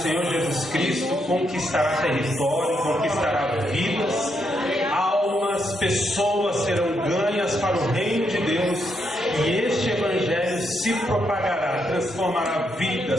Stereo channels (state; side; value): normal; both; correlation 0.79